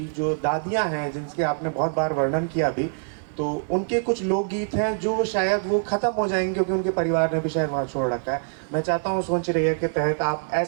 जो दादियाँ हैं, जिनके आपने बहुत बार वर्णन किया अभी, तो उनके कुछ लोकगीत हैं जो शायद वो ख़त्म हो जाएंगे क्योंकि उनके परिवार ने भी शायद वहाँ छोड़ रखा है। मैं चाहता हूँ सोच रही है के तहत आप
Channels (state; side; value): silent; left; 61 dB below the other